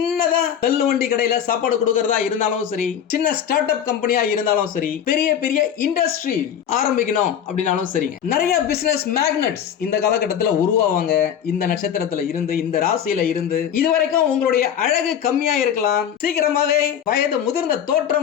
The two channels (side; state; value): right; quieter; 9.0 dB